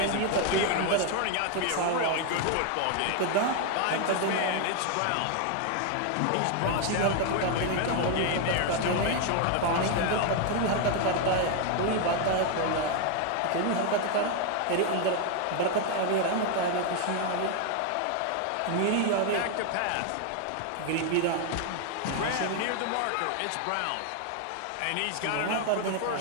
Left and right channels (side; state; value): both; different; correlation 0.01